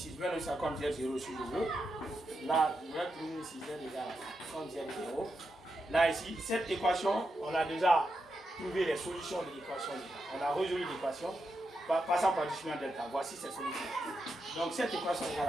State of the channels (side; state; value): both; normal; correlation 0.86